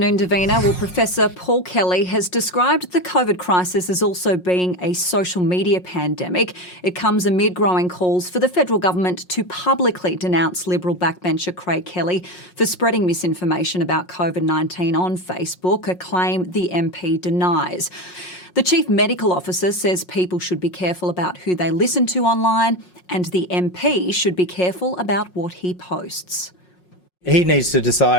Davina. Well, Professor Paul Kelly has described the COVID crisis as also being a social media pandemic. It comes amid growing calls for the federal government to publicly denounce Liberal backbencher Craig Kelly for spreading misinformation about COVID-19 on Facebook, a claim the MP denies. The Chief Medical Officer says people should be careful about who they listen to online, and the MP should be careful about what he posts. He needs to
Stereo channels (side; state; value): right; late; 5.5 ms